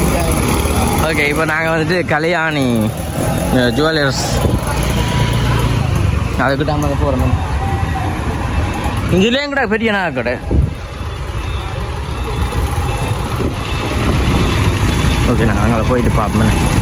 ஓகே இப்போ நாங்கள் வந்துட்டு கல்யாணி ஜுவல்லர்ஸ் அதுக்கிட்ட அம்மா போகிறோம். இதுலேயும் கூட பெரிய நகை கடை. ஓகே நாங்கள் அங்கே போயிட்டு பார்ப்போம்.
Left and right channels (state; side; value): identical; both; correlation 1.00